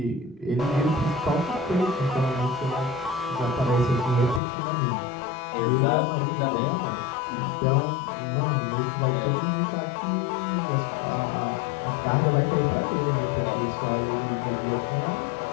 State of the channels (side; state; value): right; drops out; at 4.4 s